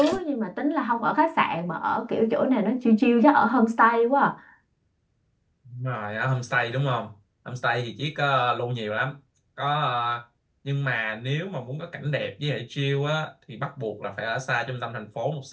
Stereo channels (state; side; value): identical; both; correlation 1.00